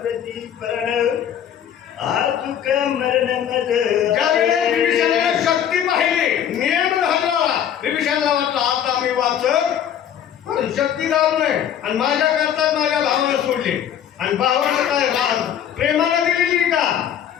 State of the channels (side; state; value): right; quieter; 9.6 dB